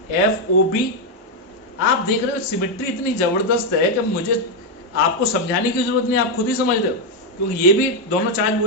FOB, आप देख रहे हो सिमेट्री इतनी जबरदस्त है कि मुझे आपको समझाने की जरूरत नहीं, आप खुद ही समझ रहे हो, क्योंकि ये भी दोनों चार्ज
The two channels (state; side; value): normal; both; correlation 0.02